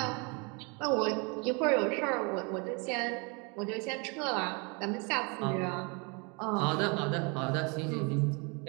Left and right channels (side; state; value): left; quieter; 31.7 dB